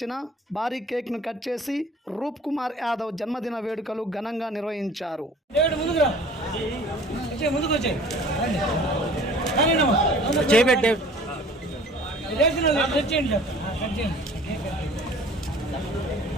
భారీ కేక్ను కట్ చేసి రూప్ కుమార్ యాదవ్ జన్మదిన వేడుకలు ఘనంగా నిర్వహించారు.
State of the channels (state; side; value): normal; both; correlation 0.49